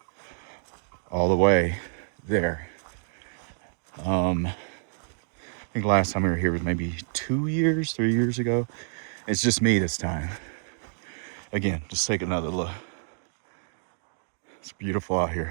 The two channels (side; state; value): left; silent; digital silence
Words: all the way there. I think last time we were here was maybe 3 years ago. It's just me this time. Again, just take another look. It's beautiful out